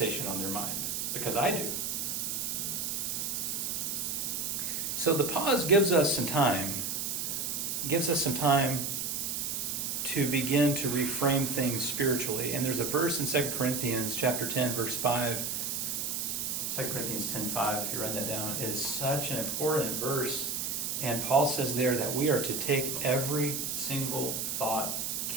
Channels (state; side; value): noise; right; hiss, 2 dB below the sound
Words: on their mind, because I do. So the pause gives us some time to begin to reframe things spiritually. And there's a verse in 2 Corinthians chapter 10, verse 5. 2 Corinthians 10:5, if you write that down, is such an important verse. And Paul says there that we are to take every single thought